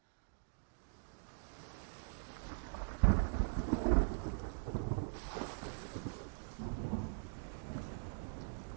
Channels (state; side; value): silent; left; digital silence